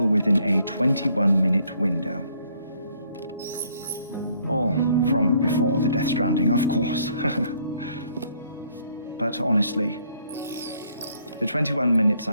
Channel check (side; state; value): both; inverted; correlation -0.66